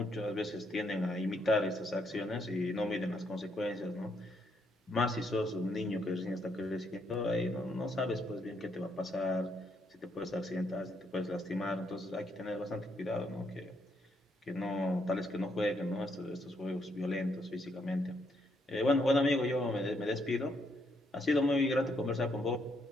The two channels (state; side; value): normal; both; correlation 0.74